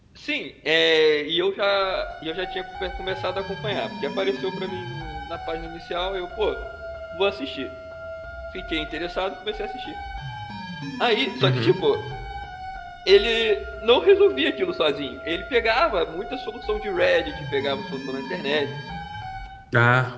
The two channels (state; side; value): identical; both; correlation 1.00